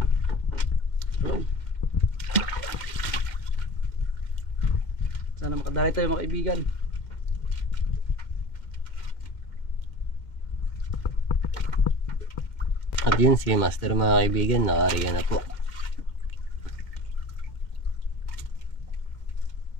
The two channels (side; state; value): right; late; 2.0 ms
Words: Sana makadali tayo mga kaibigan. At yun si Master mga kaibigan, nakariya na po.